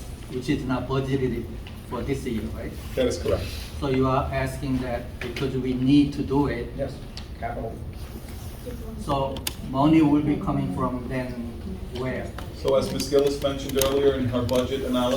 which is not budgeted for this year, right? That is correct. So you are asking that because we need to do it, Yes, capital. so money will be coming from then where? So as Ms. Gillis mentioned earlier in her budget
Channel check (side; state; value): both; identical; correlation 1.00